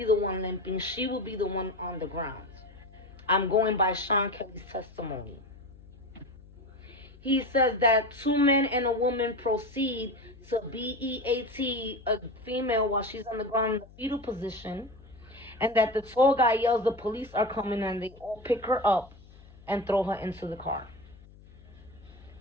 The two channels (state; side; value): noise; left; hum, 22 dB below the sound